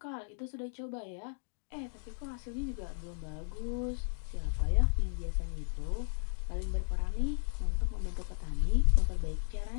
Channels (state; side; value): silent; right; digital silence